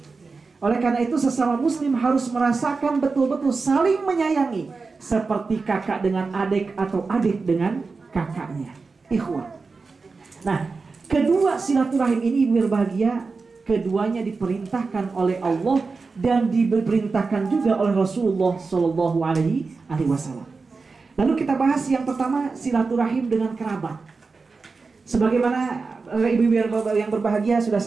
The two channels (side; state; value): left; quieter; 4.3 dB